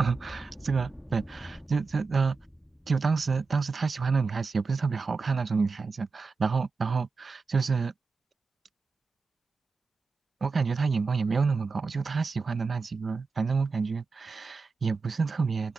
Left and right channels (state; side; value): quieter; left; 4.5 dB